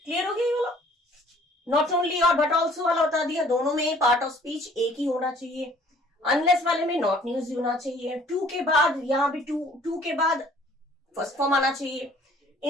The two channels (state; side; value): normal; both; correlation 0.56